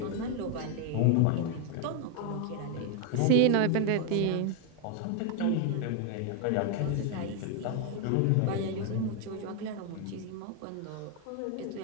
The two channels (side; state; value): both; different; correlation 0.01